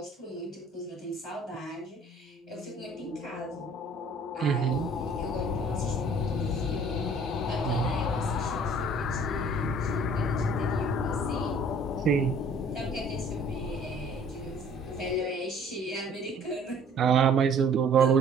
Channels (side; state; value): both; normal; correlation 0.53